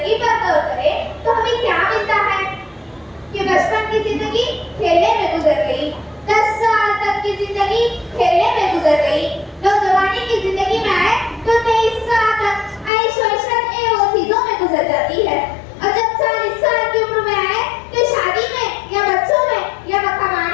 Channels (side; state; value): right; drops out; at 12.9 s